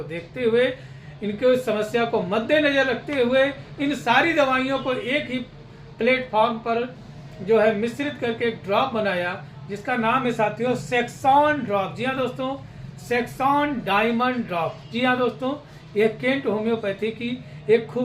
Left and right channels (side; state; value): both; identical; correlation 1.00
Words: देखते हुए, इनके समस्या को मद्देनजर रखते हुए इन सारी दवाइयों को एक ही प्लेटफॉर्म पर जो है मिश्रित करके एक ड्रॉप बनाया, जिसका नाम है साथियों सेक्सॉन ड्रॉप। जी हाँ दोस्तों, सेक्सॉन डायमंड ड्रॉप। जी हाँ दोस्तों, यह केंट होम्योपैथी की एक